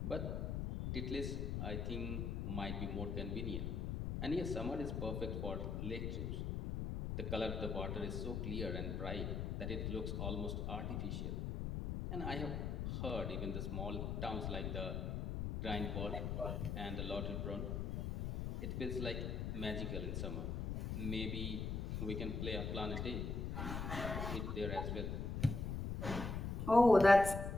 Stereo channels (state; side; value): noise; left; rumble, 2 dB below the sound